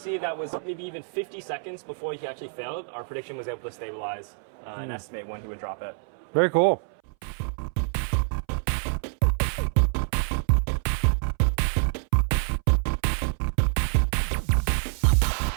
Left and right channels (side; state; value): left; silent; 60 dB below the other